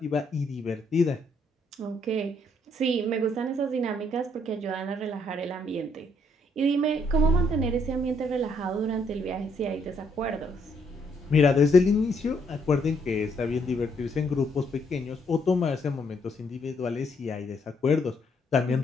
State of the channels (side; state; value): both; normal; correlation 0.71